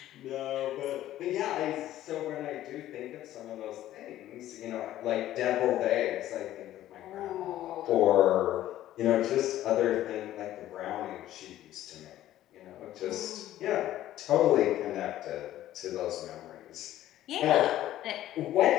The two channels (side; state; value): right; quieter; 13.5 dB